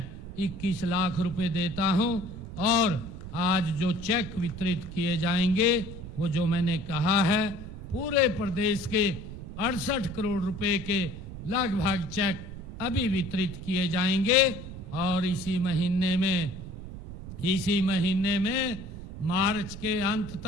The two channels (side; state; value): right; noise; rumble, 11 dB below the sound